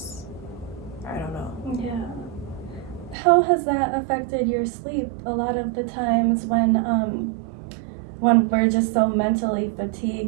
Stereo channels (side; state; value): left; drops out; at 3.2 s